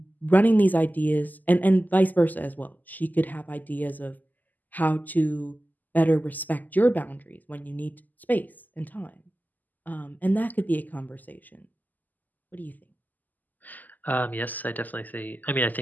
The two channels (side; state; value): right; late; 0.083 ms